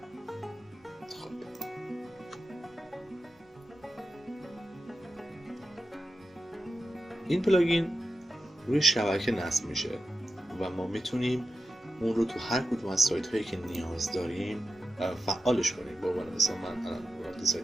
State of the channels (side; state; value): both; normal; correlation 0.90